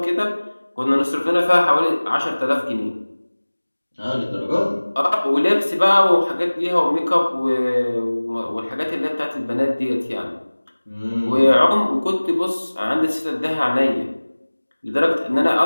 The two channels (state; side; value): inverted; both; correlation -1.00